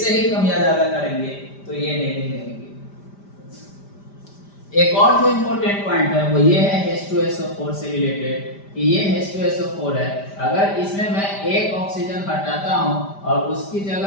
ही कम या ज्यादा करेंगे तो ये नहीं लेंगे। एक और जो इंपॉर्टेंट पॉइंट है वो ये है H2SO4 से रिलेटेड, कि ये H2SO4 है, अगर इसमें मैं एक ऑक्सीजन हटाता हूं और उसकी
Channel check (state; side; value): late; right; 5.1 ms